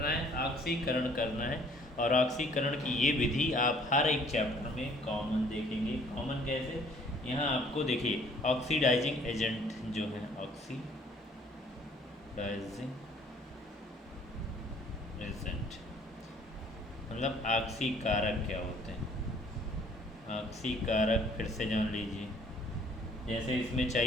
है? ऑक्सीकरण करना है। और ऑक्सीकरण की ये विधि आप हर एक चैप्टर में कॉमन देखेंगे। कॉमन कैसे? यहाँ आपको देखिए, ऑक्सीडाइजिंग एजेंट जो है, ऑक्सीडाइजिंग एजेंट मतलब ऑक्सीकारक क्या होते हैं? ऑक्सीकारक फिर से जान लीजिए। जैसे इसमें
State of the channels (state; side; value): normal; both; correlation 0.58